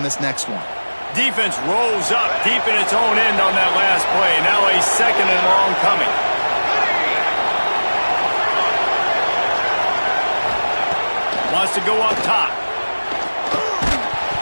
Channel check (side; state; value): both; inverted; correlation -1.00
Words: this next one. Defense rolls up deep in its own end on that last play. Now a 2nd and long coming. Wants to go up top.